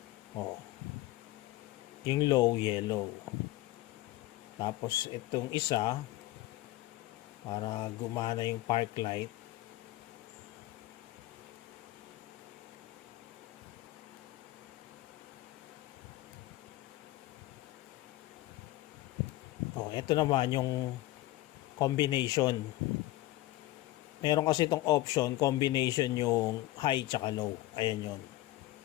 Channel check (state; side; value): quieter; right; 17.1 dB